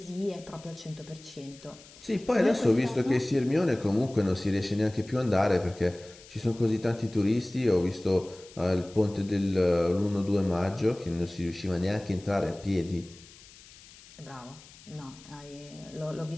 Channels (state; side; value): noise; left; hiss, 21 dB below the sound